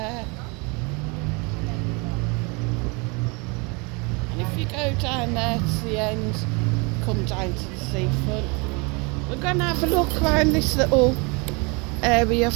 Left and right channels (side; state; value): left; quieter; 30.1 dB